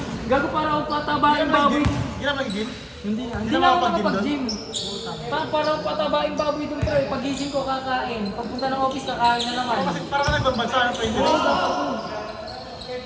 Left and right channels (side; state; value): both; identical; correlation 1.00